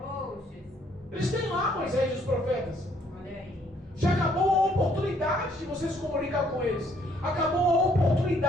Jesus. Eles têm lá Moisés e os profetas. Olha aí. Já acabou a oportunidade de você se comunicar com eles. Acabou a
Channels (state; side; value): normal; both; correlation 0.66